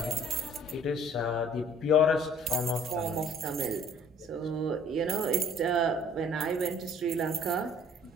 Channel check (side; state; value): both; normal; correlation 0.55